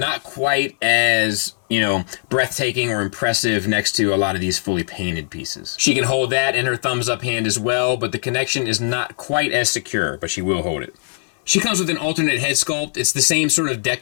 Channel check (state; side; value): silent; right; 66 dB below the other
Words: quite as, you know, breathtaking or impressive next to a lot of these fully painted pieces. She can hold that in her thumbs up hand as well, but the connection is not quite as secure, but she will hold it. She comes with an alternate head sculpt. It's the same sort of